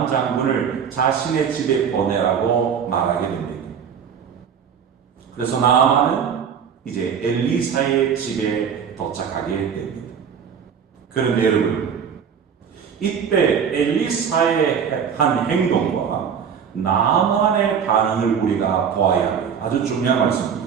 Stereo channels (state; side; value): quieter; left; 7.3 dB